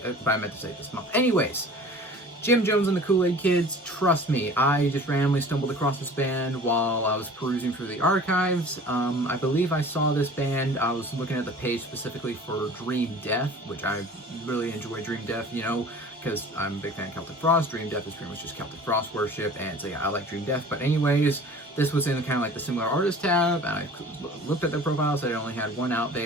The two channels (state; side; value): normal; both; correlation 0.43